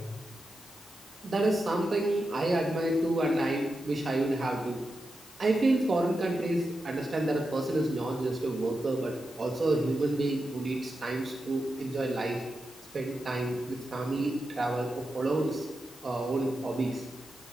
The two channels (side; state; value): both; normal; correlation 0.89